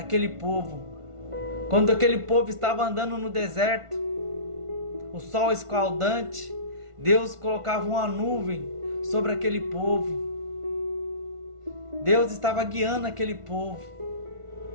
povo. Quando aquele povo estava andando no deserto, o sol escaldante, Deus colocava uma nuvem sobre aquele povo. Deus estava guiando aquele povo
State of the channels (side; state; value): left; late; 1.5 ms